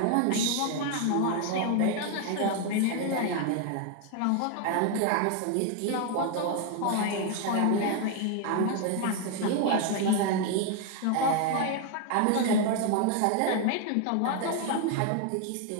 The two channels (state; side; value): different; both; correlation 0.01